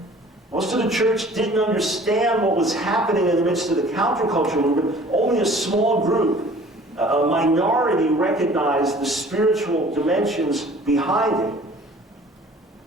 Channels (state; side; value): normal; both; correlation 0.50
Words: Most of the church didn't understand what was happening in the midst of the counterculture movement. Only a small group, a minority, recognized the spiritual dimensions behind it.